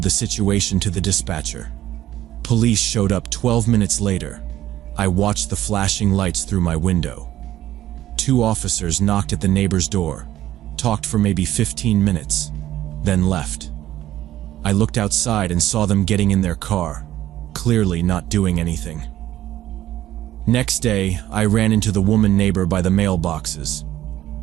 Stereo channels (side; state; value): left; quieter; 13.5 dB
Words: the situation to the dispatcher. Police showed up 12 minutes later. I watched the flashing lights through my window. 2 officers knocked at the neighbor's door, talked for maybe 15 minutes, then left. I looked outside and saw them getting in their car, clearly not doing anything. Next day, I ran into the woman neighbor by the mailboxes.